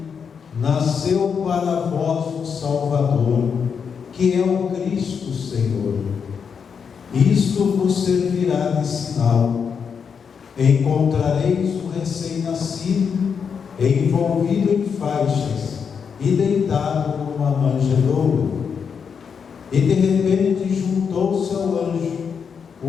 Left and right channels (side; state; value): right; quieter; 6.5 dB